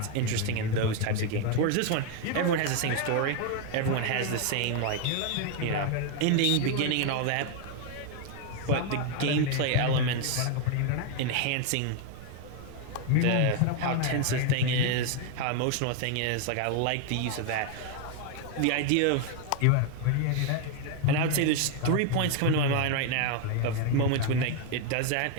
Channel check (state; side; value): different; both; correlation 0.01